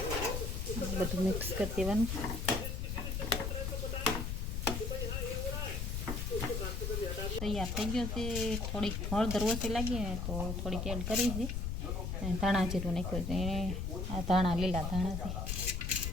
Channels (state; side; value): noise; left; rumble, 2 dB below the sound